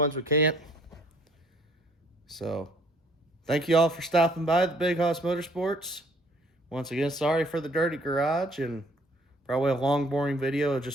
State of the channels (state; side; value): normal; both; correlation 0.60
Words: we can't. So thank you all for stopping by the Big Hoss Motorsports. Once again, sorry for the dirty garage and probably a long, boring video of